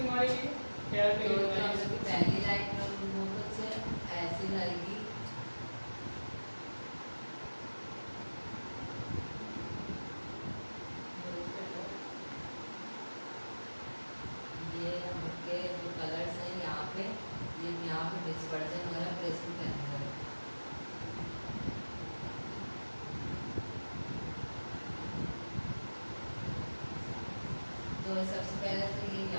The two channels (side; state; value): both; inverted; correlation -1.00